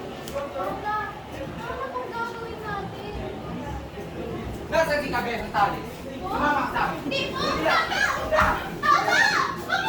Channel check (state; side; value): identical; both; correlation 1.00